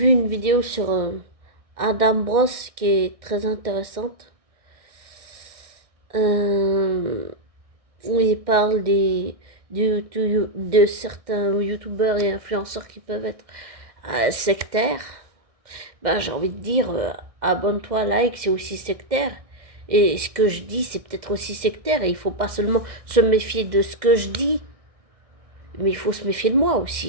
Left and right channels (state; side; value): late; left; 1.6 ms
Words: une vidéo sur Adam Bros qui est très intéressante. Euh, où il parle de certains youtubeurs et influenceurs qui peuvent être sectaires. Ben, j'ai envie de dire, abonne-toi, like, c'est aussi sectaire. Et ce que je dis, c'est peut-être aussi sectaire. Et il faut pas seulement se méfier de ce que je dis, mais il faut se méfier de moi